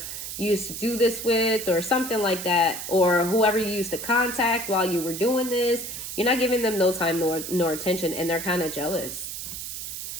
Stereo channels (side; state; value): right; noise; hiss, 7 dB below the sound